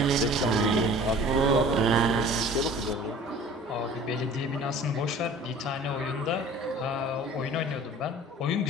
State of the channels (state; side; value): normal; both; correlation 0.46